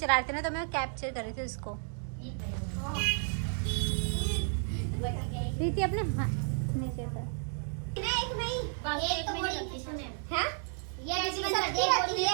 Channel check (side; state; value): left; silent; 56 dB below the other